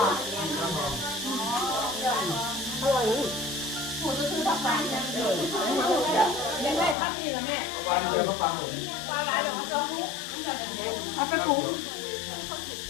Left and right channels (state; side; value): drops out; right; at 7.0 s